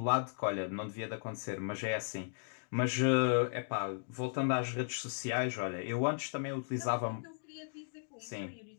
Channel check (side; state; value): right; silent; digital silence